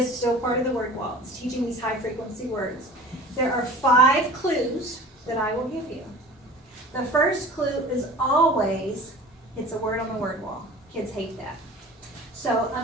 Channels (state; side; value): normal; both; correlation 0.41